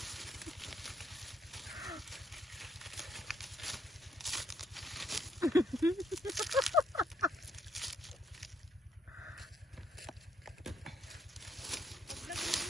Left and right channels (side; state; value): both; normal; correlation 0.71